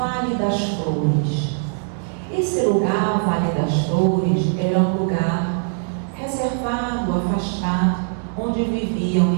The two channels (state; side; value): silent; left; digital silence